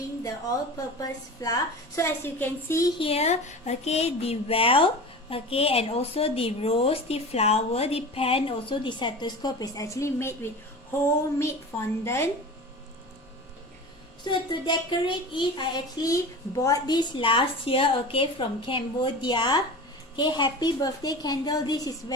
the all-purpose flour. So as you can see here, the well, and also the rose, the flower, the pan, also the stethoscope is actually made with homemade fondant. So to decorate it, I actually bought this last year, from Cambodia. Happy birthday candle. This is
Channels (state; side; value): normal; both; correlation 0.33